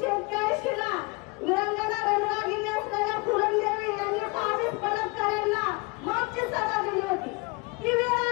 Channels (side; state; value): right; quieter; 28.4 dB